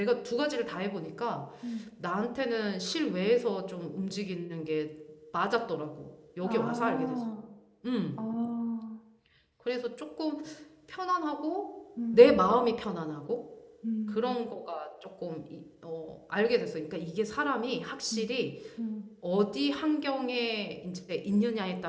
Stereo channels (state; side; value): identical; both; correlation 1.00